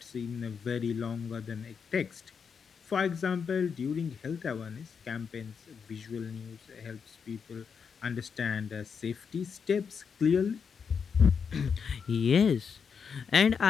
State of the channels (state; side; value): quieter; right; 6.3 dB